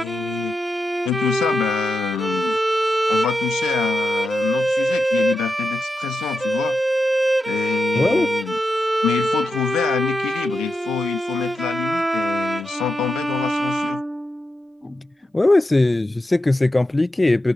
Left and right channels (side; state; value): both; normal; correlation 0.88